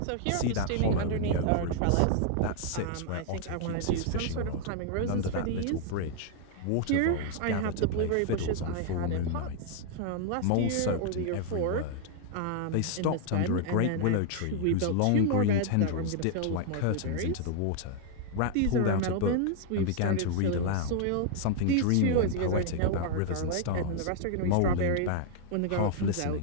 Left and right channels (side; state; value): both; different; correlation 0.00